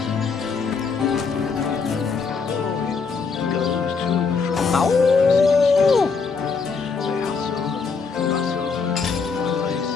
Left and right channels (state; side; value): quieter; right; 5.1 dB